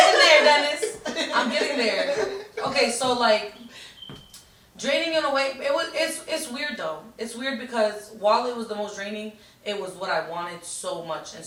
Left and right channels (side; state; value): both; identical; correlation 1.00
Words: there, Dennis. I'm getting there. Okay, so like draining in a way, it's weird though. It's weird because while it was the most draining, it was what I wanted so much and